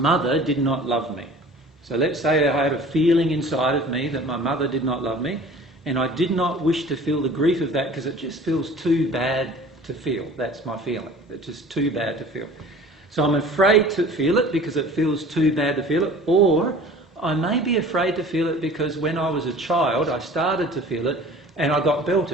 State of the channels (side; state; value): both; normal; correlation 0.45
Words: did not love me. So let's say I had a feeling inside of me that my mother did not love me, and I did not wish to feel the grief of that because it just feels too bad to feel. That's my feeling. It's just too bad to feel. So I'm afraid to feel it because it feels too bad to feel it, or I may be afraid to feel it because when I was a child I started to feel it and I got